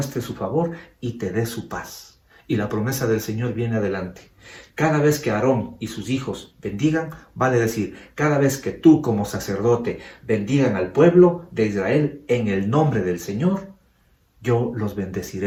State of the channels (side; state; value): both; identical; correlation 1.00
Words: su favor y te dé su paz. Y la promesa del Señor viene adelante. Cada vez que Aarón y sus hijos bendigan, vale decir, cada vez que tú como sacerdote bendigan al pueblo de Israel en el nombre del Señor, yo los